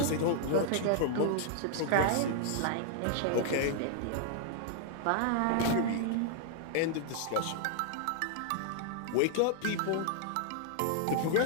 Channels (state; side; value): different; both; correlation -0.01